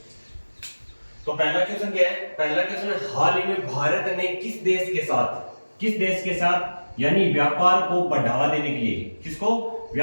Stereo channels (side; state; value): both; inverted; correlation -1.00